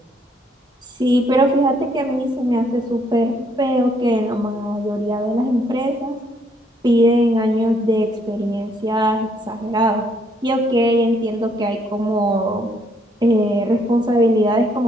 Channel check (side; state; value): both; normal; correlation 0.69